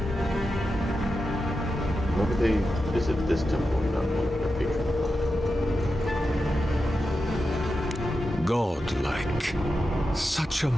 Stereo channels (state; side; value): normal; both; correlation 0.90